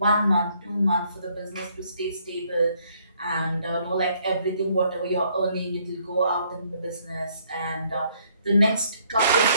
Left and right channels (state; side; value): inverted; both; correlation -0.67